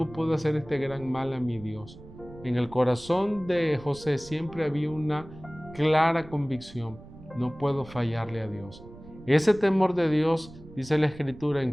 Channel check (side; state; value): right; noise; rumble, 18 dB below the sound